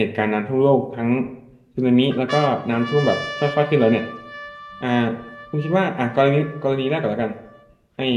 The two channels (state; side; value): identical; both; correlation 1.00